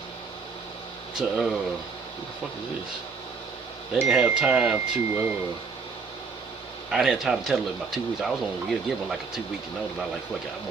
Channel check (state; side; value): quieter; left; 5.0 dB